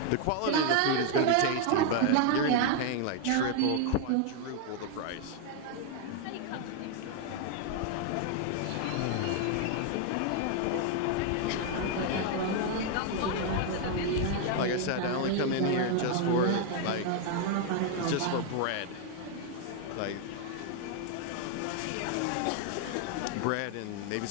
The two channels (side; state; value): both; different; correlation 0.01